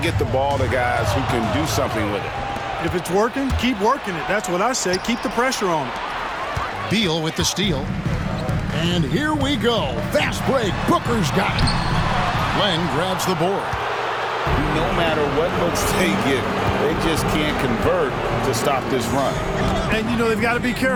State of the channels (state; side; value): identical; both; correlation 1.00